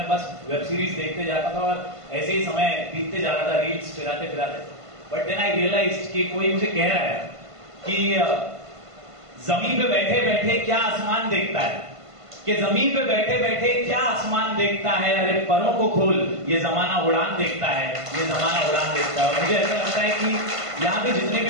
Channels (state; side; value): late; left; 1.5 ms